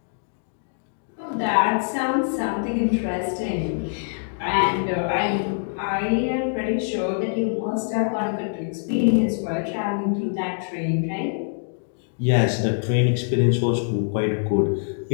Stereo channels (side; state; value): right; silent; digital silence